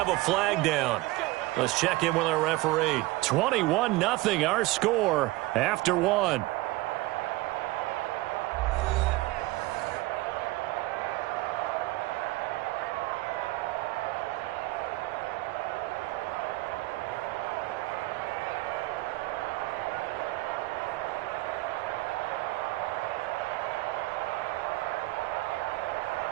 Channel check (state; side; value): quieter; left; 19.7 dB